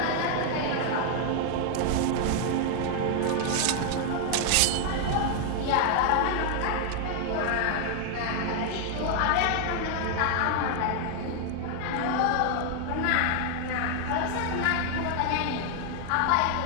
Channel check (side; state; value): both; different; correlation 0.00